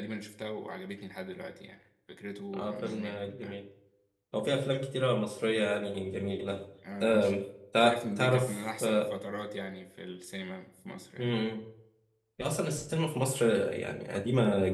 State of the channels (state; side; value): identical; both; correlation 1.00